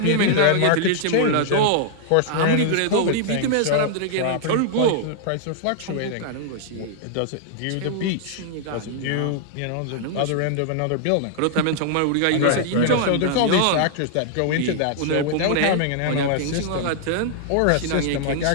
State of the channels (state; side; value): different; both; correlation -0.01